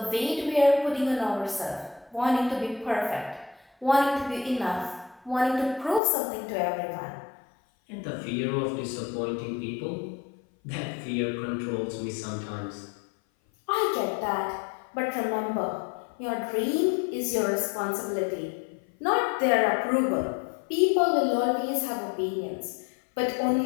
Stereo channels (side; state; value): right; drops out; at 6.0 s